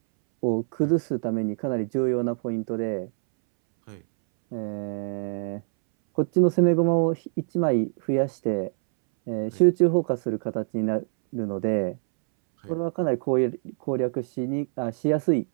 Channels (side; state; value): left; silent; 62 dB below the other